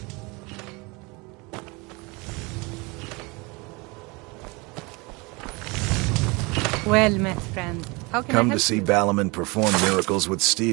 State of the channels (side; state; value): left; quieter; 26.8 dB